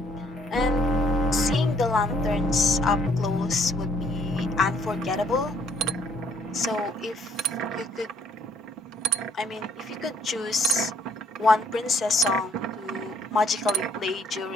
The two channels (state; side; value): normal; both; correlation 0.64